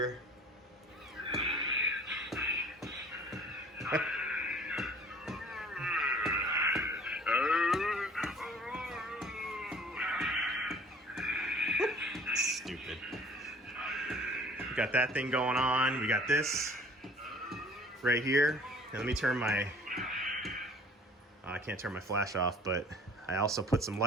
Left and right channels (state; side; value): normal; both; correlation 0.50